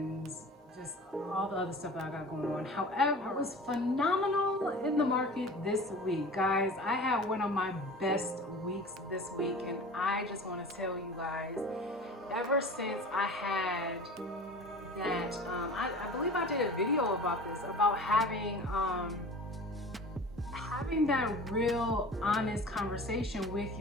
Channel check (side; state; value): both; normal; correlation 0.39